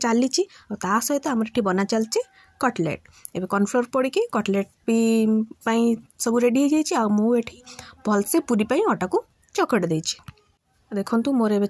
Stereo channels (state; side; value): identical; both; correlation 1.00